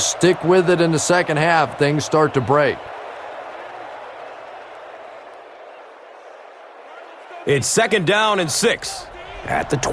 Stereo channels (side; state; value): both; identical; correlation 1.00